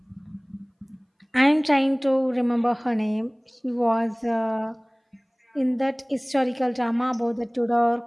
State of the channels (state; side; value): identical; both; correlation 1.00